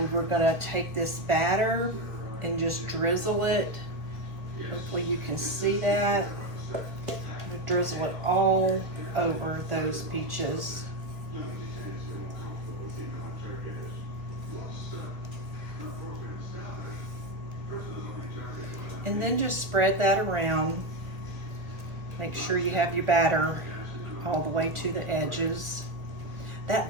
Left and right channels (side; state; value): left; late; 1.1 ms